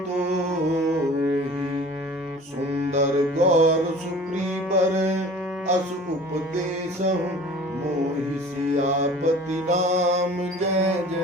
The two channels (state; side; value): normal; both; correlation 0.44